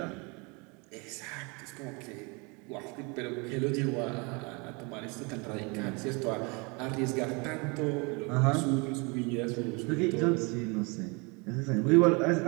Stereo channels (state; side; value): quieter; left; 30.0 dB